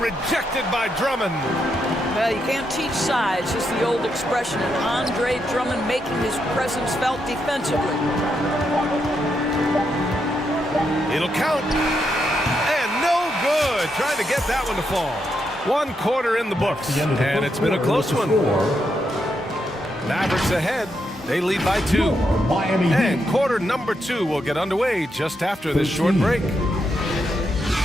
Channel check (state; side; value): normal; both; correlation 0.81